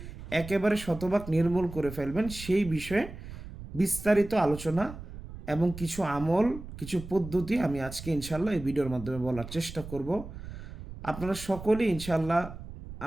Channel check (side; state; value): right; noise; rumble, 12 dB below the sound